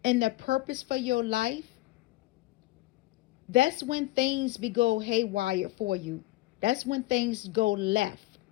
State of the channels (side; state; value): right; quieter; 18.6 dB